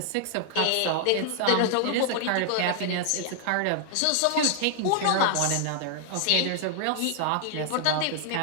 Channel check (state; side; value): different; both; correlation 0.00